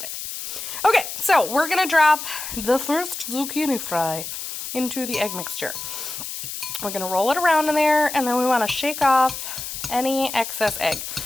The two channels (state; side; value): noise; left; hiss, 7 dB below the sound